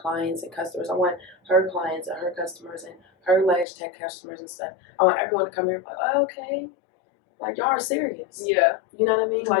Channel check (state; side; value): drops out; right; at 3.7 s